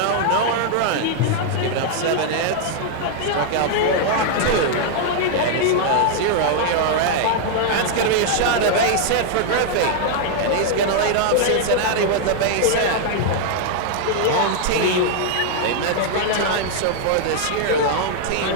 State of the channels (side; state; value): both; different; correlation 0.00